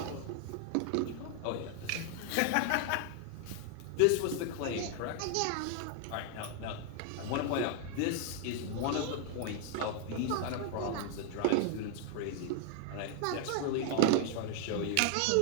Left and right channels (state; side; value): different; both; correlation 0.00